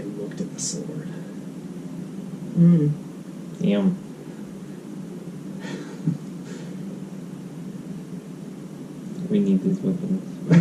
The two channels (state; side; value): identical; both; correlation 1.00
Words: looked at the sword. Mm. Damn. We need these weapons.